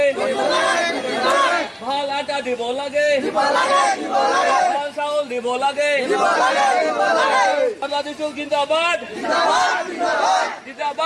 ভাল আটা দিব লাগে। ভাল চাউল দিব লাগে। বাংলাদেশ জিন্দাবাদ,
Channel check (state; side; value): identical; both; correlation 1.00